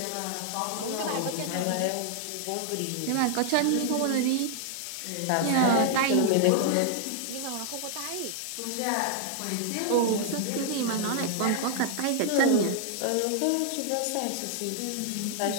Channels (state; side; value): different; both; correlation 0.00